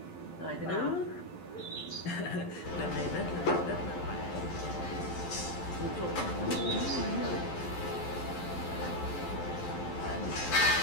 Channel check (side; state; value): right; late; 11 ms